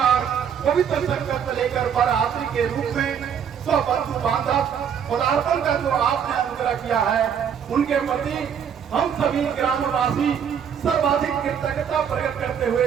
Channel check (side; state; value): left; quieter; 7.9 dB